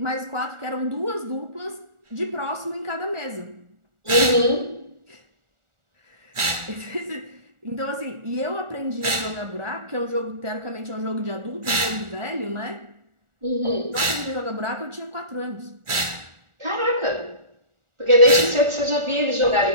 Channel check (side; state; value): left; late; 1.4 ms